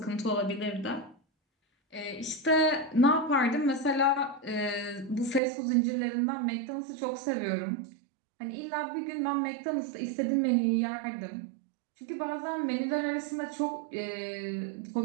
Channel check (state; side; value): drops out; left; at 5.4 s